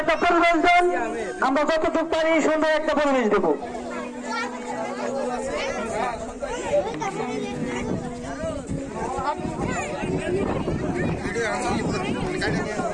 একটা পরিবেশ দেন, আমরা যতটুকু পারি সুন্দর একটা পরিবেশ দেব।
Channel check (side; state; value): both; identical; correlation 1.00